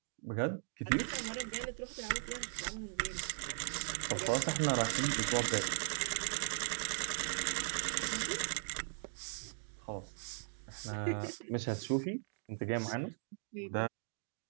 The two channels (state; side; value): silent; left; digital silence